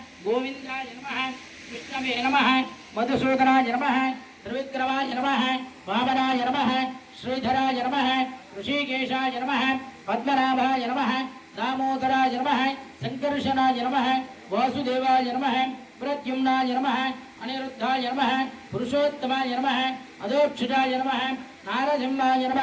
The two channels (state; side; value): identical; both; correlation 1.00